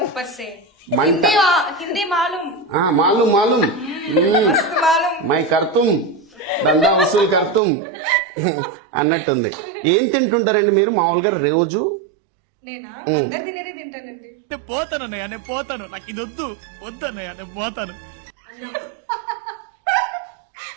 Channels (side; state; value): left; drops out; at 7.6 s